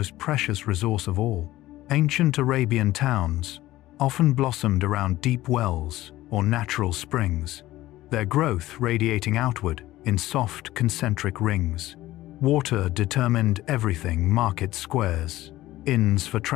precious resource of all. Ancient Arabian towns often blossomed around deep wells or natural springs, their growth radiating outward in soft concentric rings. Water determined everything: market squares, inns for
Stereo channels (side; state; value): right; quieter; 16.2 dB